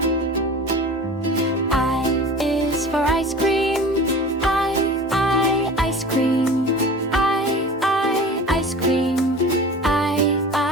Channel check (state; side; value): normal; both; correlation 0.38